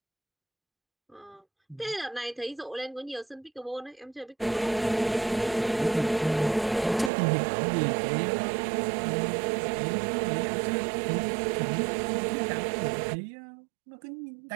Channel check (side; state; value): left; drops out; at 7.1 s